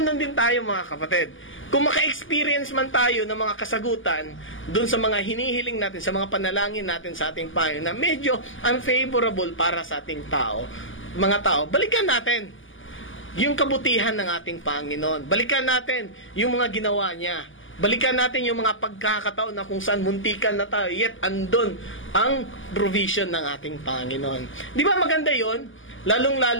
din tayo, mga kapatid. Kung maka-experience man tayo ng mga kasagutan dun sa mga hinihiling natin, sa mga panalangin natin sa ating Panginoon na medyo unfavorable para sa ating mga tao, balikan natin yung kabutihan ng ating Panginoon. Balikan natin yung mga ginawa niya. Balikan natin yung mga pagkakataon na kung saan muntikan na tayo, yet andun ang provision ng ating Panginoon. Di ba maganda yon?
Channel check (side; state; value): right; late; 0.58 ms